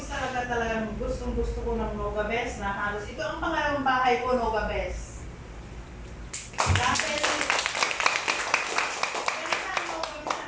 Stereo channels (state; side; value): identical; both; correlation 1.00